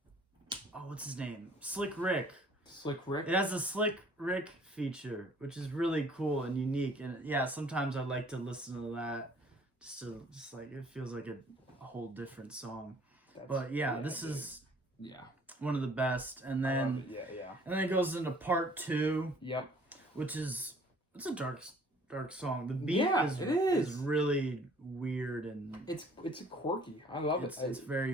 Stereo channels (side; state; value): both; normal; correlation 0.56